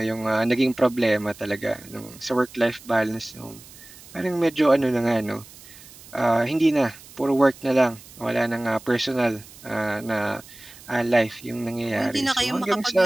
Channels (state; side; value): noise; right; hiss, 20 dB below the sound